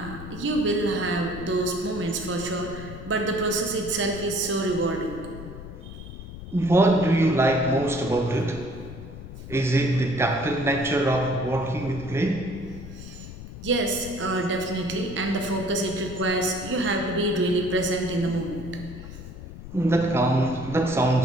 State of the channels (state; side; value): noise; left; rumble, 12 dB below the sound